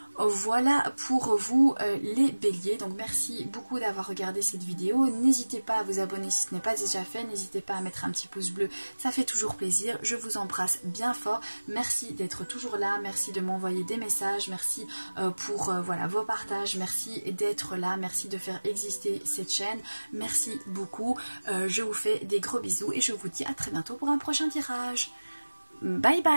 Voilà pour vous les béliers, donc merci beaucoup d'avoir regardé cette vidéo. N'hésitez pas à vous abonner si ce n'est pas déjà fait, n'hésitez pas à mettre un petit pouce bleu, ça fait toujours plaisir. Je vous embrasse bien fort, merci d'être toujours là, merci de m'envoyer des messages, merci pour voilà, vos partages, merci d'être là, merci de faire exister cette chaîne, merci beaucoup. Je vous fais des gros bisous et je vous dis à très bientôt pour un prochain tirage. Bye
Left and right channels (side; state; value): both; inverted; correlation -1.00